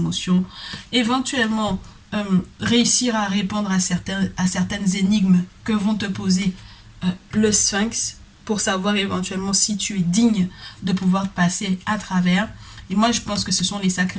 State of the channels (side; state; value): both; identical; correlation 1.00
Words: éventuellement réussir à répondre à certaines énigmes que vont te poser le Sphinx pour savoir éventuellement si tu es digne de pouvoir passer à travers. Et moi, je pense que ce sont les